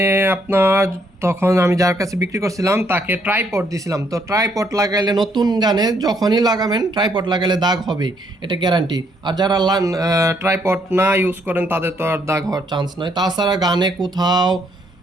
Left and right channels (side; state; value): both; normal; correlation 0.70